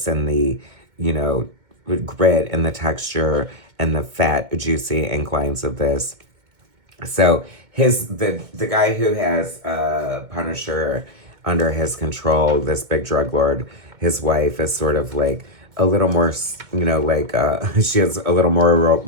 and the, grit and the texture and the fat, juicy ink lines of this. So the guy who has Punisher under his control, this big drug lord, his wife is sort of like a little more, she is a little more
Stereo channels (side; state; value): left; late; 2.2 ms